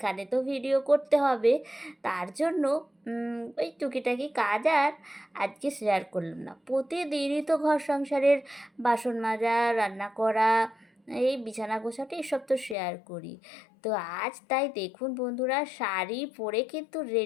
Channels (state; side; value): drops out; right; at 12.8 s